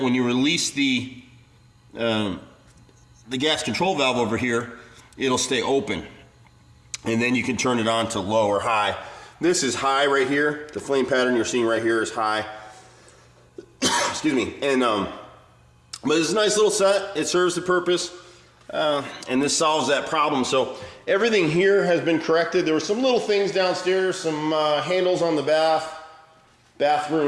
when you release the gas control valve over here, it'll stay open. And then you can turn it on to low or high. This is high right here. The flame pattern you're seeing right here is high. Excuse me. And but it's a nice little set. It serves the purpose. And this solves that problem. So everything here has been corrected. There were some little things downstairs, some handles on the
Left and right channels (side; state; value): both; identical; correlation 1.00